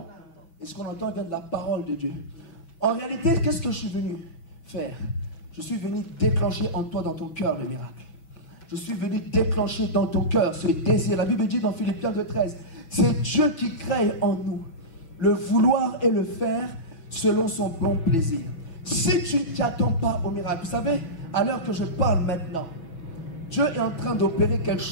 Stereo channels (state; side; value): late; right; 6.2 ms